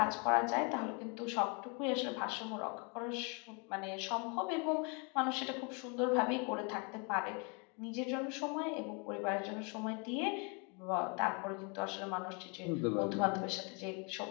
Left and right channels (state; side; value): quieter; right; 33.7 dB